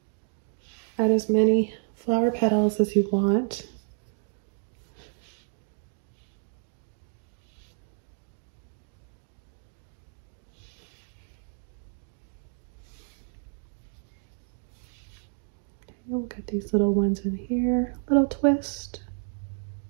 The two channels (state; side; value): silent; left; digital silence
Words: add as many flower petals as you want. We'll get these little ones in here, little twist.